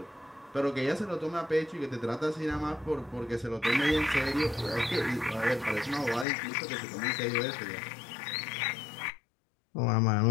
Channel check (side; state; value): right; drops out; at 6.2 s